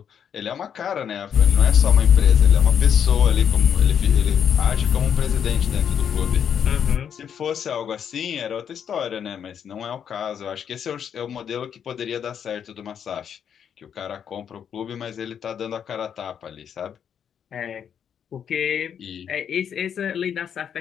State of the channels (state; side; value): quieter; right; 8.2 dB